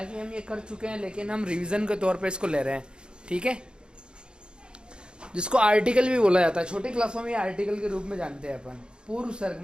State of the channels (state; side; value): late; left; 0.051 ms